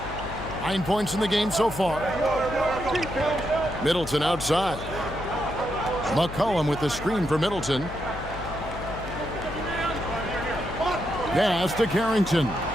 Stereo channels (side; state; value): left; noise; hum, 11 dB below the sound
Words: 9 points in the game so far. Middleton outside. McCollum with the screen for Middleton. Pass to Carrington.